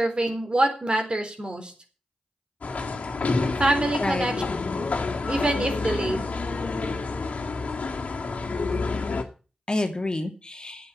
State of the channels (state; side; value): normal; both; correlation 0.88